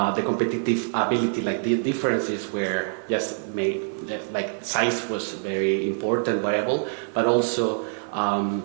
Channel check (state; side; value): silent; left; digital silence